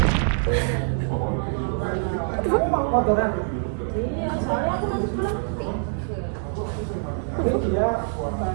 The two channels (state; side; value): silent; left; digital silence